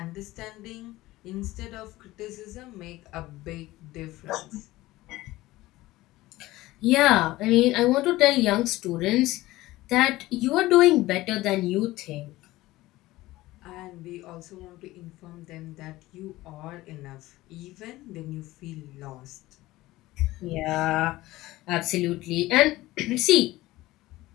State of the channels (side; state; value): right; quieter; 17.9 dB